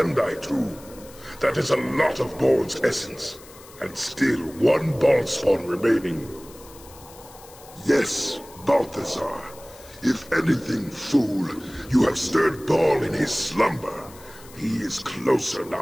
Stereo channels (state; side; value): noise; left; hiss, 21 dB below the sound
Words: too. That is a lot of Bhaal's essence, and still 1 Bhaalspawn remaining. Yes, Balthazar. If anything, fool, you have stirred Bhaal in his slumber. He is closer